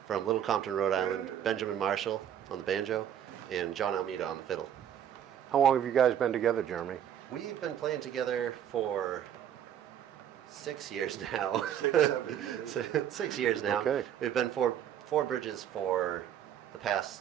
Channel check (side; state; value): left; quieter; 9.9 dB